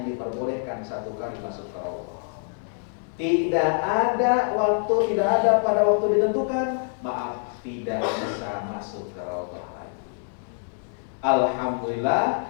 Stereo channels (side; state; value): right; silent; digital silence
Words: diperbolehkan 1 kali masuk ke Raudhah. Tidak ada waktu, tidak ada pada waktu ditentukan, maaf, tidak bisa masuk ke Raudhah lagi.